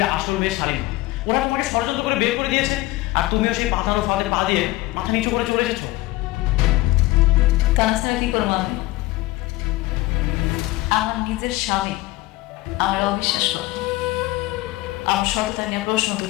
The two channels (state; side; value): quieter; right; 19.4 dB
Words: আসল মেয়ে শালিমা, ওরা তোমাকে ষড়যন্ত্র করে বের করে দিয়েছে, আর তুমিও সেই পাতানো ফাঁদে পা দিয়ে মাথা নিচু করে চলে এসেছো। তাছাড়া কি করবো আমি? আমার নিজের স্বামী আমার অবিশ্বাস করে, আমার সততা নিয়ে প্রশ্ন